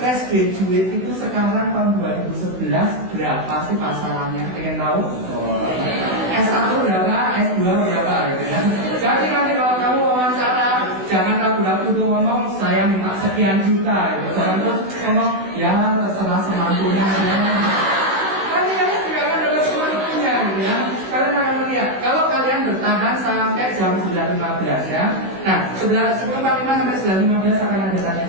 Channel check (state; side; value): late; left; 16 ms